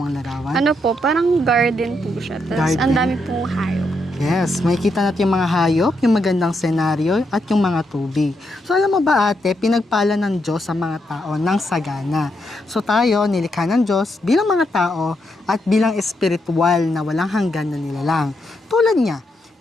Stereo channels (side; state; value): both; normal; correlation 0.80